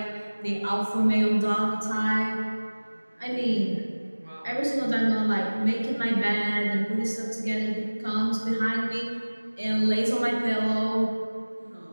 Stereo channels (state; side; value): inverted; both; correlation -1.00